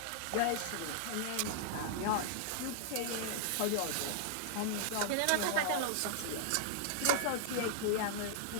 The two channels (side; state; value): both; different; correlation -0.01